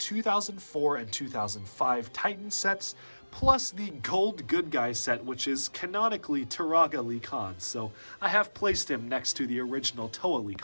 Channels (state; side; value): inverted; both; correlation -1.00